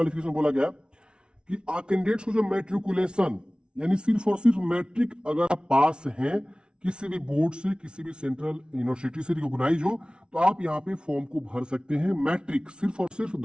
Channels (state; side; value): late; left; 0.056 ms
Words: बोला गया कि कैंडिडेट्स को जो मैट्रिकुलेशन, यानी सिर्फ और सिर्फ मैट्रिक अगर आप पास हैं किसी भी बोर्ड से, किसी भी सेंट्रल यूनिवर्सिटी से रिकॉग्नाइज हो, तो आप यहाँ पे फॉर्म को भर सकते हैं। मैट्रिक सिर्फ और सिर्फ